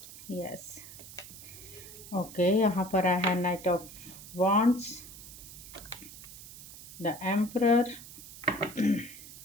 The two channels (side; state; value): right; noise; hiss, 15 dB below the sound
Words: Yes, okay, यहाँ पर आया है knight of wands, the emperor,